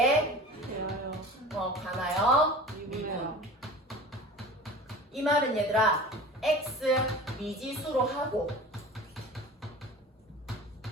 대하여. 관하여 미분해요. 이 말은 얘들아 x 미지수로 하고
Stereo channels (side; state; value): both; normal; correlation 0.38